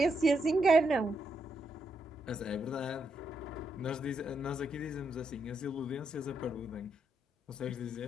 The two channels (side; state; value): both; normal; correlation 0.79